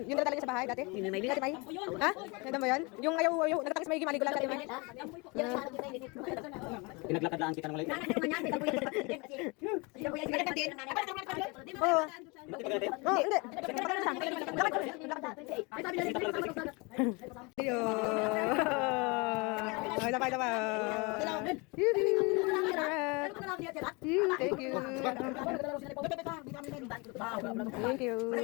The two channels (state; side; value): quieter; right; 28.3 dB